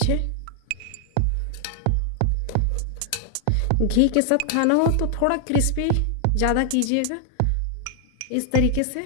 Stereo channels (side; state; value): both; different; correlation 0.00